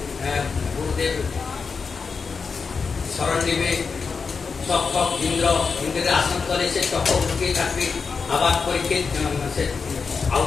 গুরুদেব স্মরণ নিবে। তক্ষক ইন্দ্রের আসন তলে সে তক্ষক লুকিয়ে থাকবে, আবার পরীক্ষিত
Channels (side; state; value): right; quieter; 5.2 dB